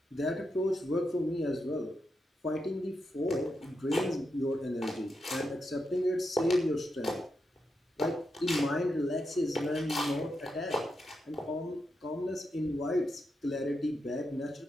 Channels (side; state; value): both; normal; correlation 0.85